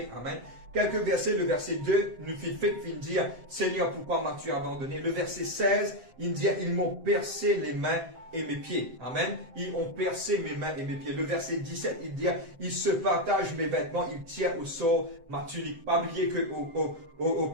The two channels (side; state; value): left; late; 7.7 ms